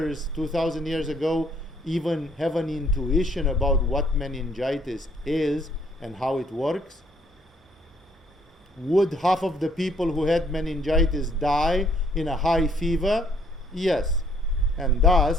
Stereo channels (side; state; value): both; normal; correlation 0.65